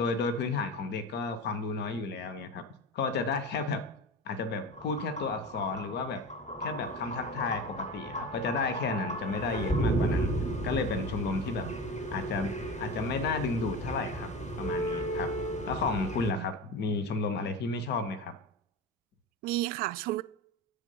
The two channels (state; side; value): normal; both; correlation 0.27